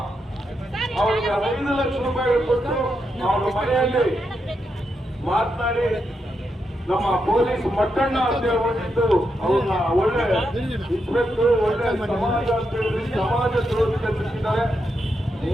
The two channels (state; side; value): normal; both; correlation 0.83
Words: ಅವರಿಗೆ 5 ಲಕ್ಷ ರೂಪಾಯಿ ಕೊಟ್ಟು ಅವರ ಮನೆಯಲ್ಲಿ ಮಾತನಾಡಿ ನಮ್ಮ ಪೊಲೀಸ್ ಮಟ್ಟಣ್ಣ ಅಂತ ಹೇಳ್ಬಿಟ್ಟು ಅವ್ರನ್ನ ಒಳ್ಳೆ ಇನ್ಸ್ಪೆಕ್ಟರ್, ಒಳ್ಳೆ ಸಮಾಜ ಅಂತ ಹೇಳಿ ಸಮಾಜ ದ್ರೋಹಿ ಕಲ್ಪಿಸಿದ್ದಾರೆ.